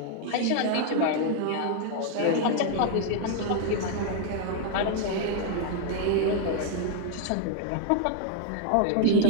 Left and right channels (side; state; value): both; different; correlation 0.00